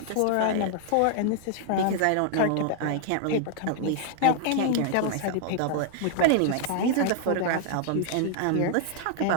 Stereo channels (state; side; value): different; both; correlation 0.00